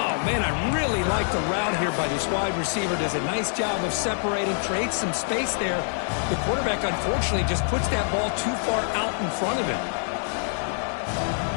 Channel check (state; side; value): silent; right; 61 dB below the other